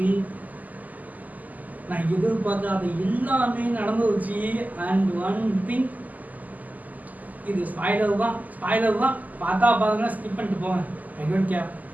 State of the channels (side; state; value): left; late; 0.080 ms